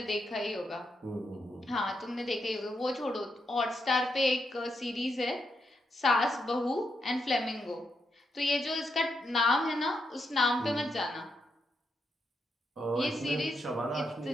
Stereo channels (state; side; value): normal; both; correlation 0.82